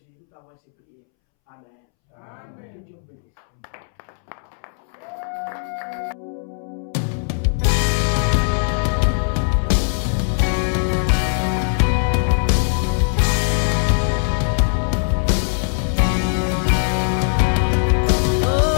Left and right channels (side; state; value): right; silent; 66 dB below the other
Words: nous t'avons ainsi prié. Amen. Amen. Que Dieu vous bénisse.